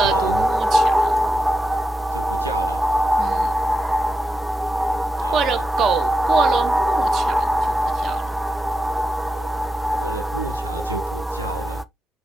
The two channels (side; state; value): both; normal; correlation 0.88